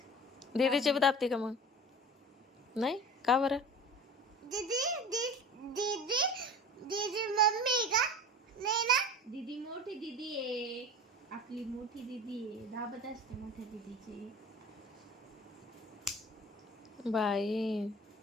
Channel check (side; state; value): both; normal; correlation 0.38